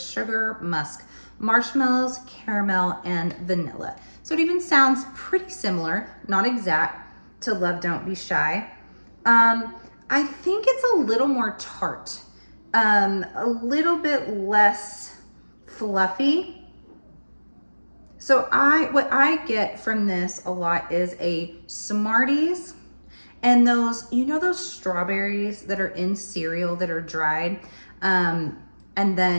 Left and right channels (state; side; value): inverted; both; correlation -1.00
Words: sugar, musk, marshmallows, caramel, and vanilla. So it even sounds pretty similar, not exact, to Love Don't Be Shy. I think it's a little more tart, a little bit less fluffy. So what I get from this a lot is a Smarties and those, you know, those strawberries that are in cereal that are dried, and